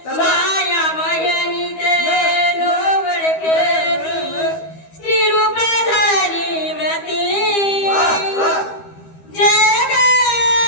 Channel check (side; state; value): right; late; 12 ms